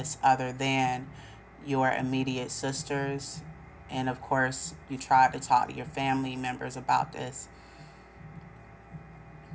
other than your immediate sisters. And of course, you tried to talk to your family members about this.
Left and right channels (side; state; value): both; identical; correlation 1.00